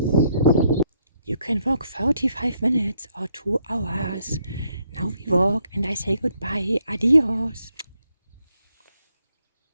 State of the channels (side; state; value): both; inverted; correlation -0.74